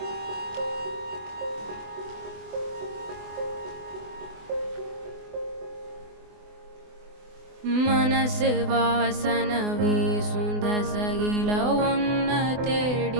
மனசு வாசன வீசும் தசையில ஒன்ன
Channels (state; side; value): late; left; 24 ms